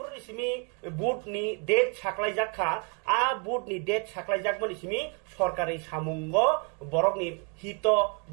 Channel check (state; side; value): quieter; left; 36.7 dB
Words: simi boot ni date saklai jakha a boot ni date saklai jakmani simi সরকারি সামুঙ্গ বরক ni hito